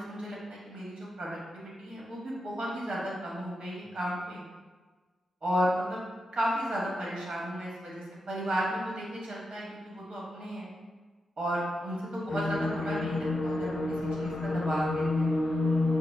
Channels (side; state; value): both; normal; correlation 0.87